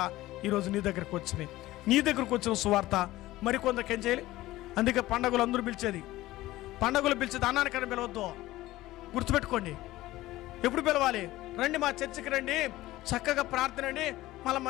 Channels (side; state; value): right; quieter; 16.9 dB